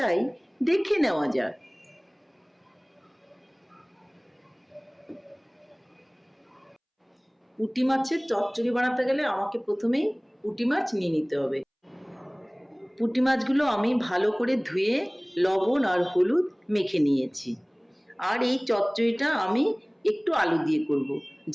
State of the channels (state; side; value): identical; both; correlation 1.00